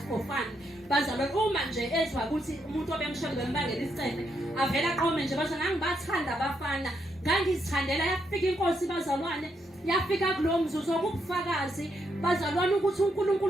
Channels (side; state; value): both; normal; correlation 0.78